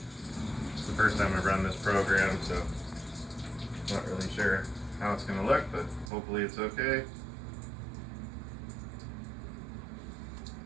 It's the first time I've run this program, so I'm not really sure how it's going to look, but hopefully it's okay.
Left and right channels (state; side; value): drops out; left; at 6.1 s